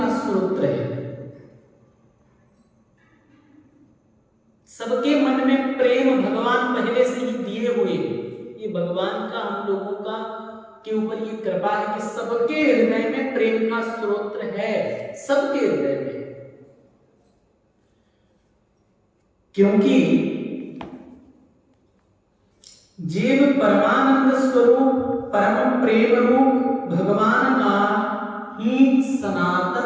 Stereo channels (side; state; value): both; identical; correlation 1.00